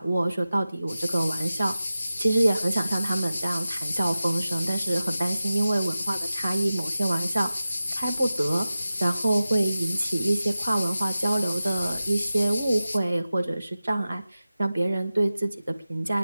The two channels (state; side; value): inverted; both; correlation -0.95